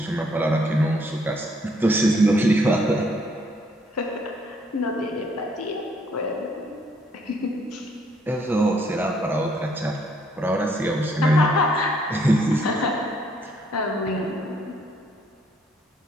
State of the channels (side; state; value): both; normal; correlation 0.68